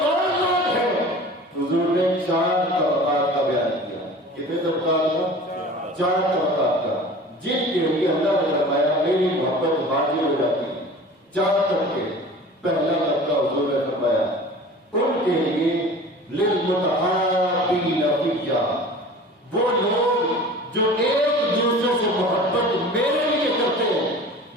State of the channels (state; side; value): normal; both; correlation 0.40